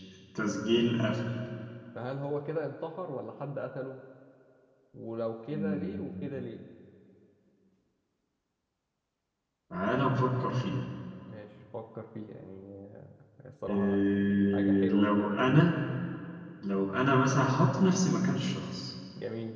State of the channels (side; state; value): both; identical; correlation 1.00